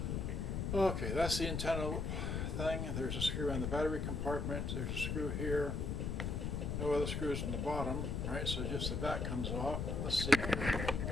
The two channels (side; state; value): left; noise; rumble, 1 dB below the sound